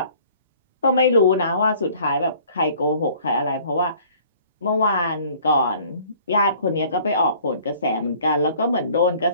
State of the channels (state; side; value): inverted; both; correlation -0.54